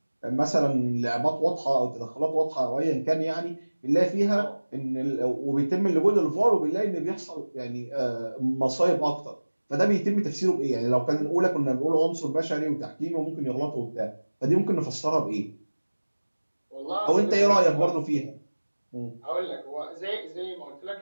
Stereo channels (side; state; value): both; inverted; correlation -1.00